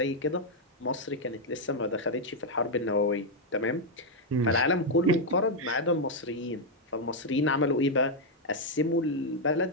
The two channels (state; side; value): normal; both; correlation -0.01